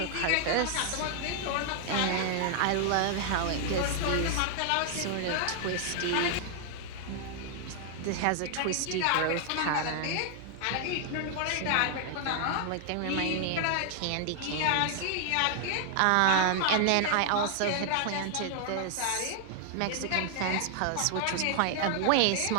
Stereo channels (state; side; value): different; both; correlation 0.00